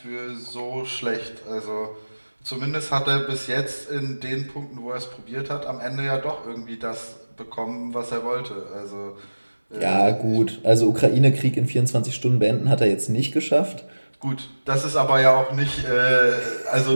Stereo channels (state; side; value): inverted; both; correlation -1.00